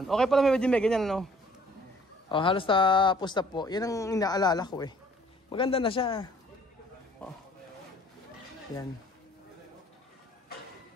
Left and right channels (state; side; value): normal; both; correlation 0.56